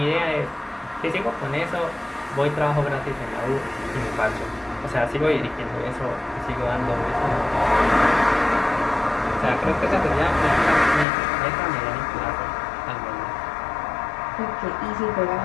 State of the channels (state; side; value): drops out; right; at 11.1 s